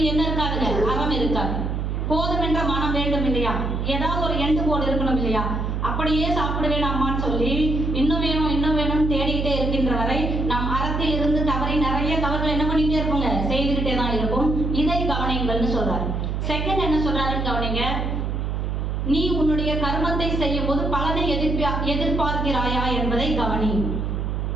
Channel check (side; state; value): right; noise; hum, 1 dB below the sound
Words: என்ன இருக்காதுங்க, அறம் இருக்காது. போதும் என்ற மனம் வேண்டும் இல்லையா, ஏதாவது ஒரு எண்டு கோடு இருக்கணும் இல்லையா. அப்படியே சாப்பிடுவேன் அம்மான்னு சொல்லி இன்னும் வேணும் இன்னும் வேணும்னு தேடிக்கிட்டே இருக்கின்ற வரை நாம் அறத்தில் இருந்து தவறி நிறைய தவறுகள் என்ன பண்ணிக்கிட்டே இருப்போங்க, செய்துக்கிட்டே தான் இருக்கும். இதை கவனிங்கள்னு சொல்றாரு. செகண்ட் என்ன சொல்றாருன்னு கவனிங்க. நீ உன்னுடைய கர்மத்தை செய்யும் போது பலனை எதிர்பார்க்கிறாயா என்பதை கவனி.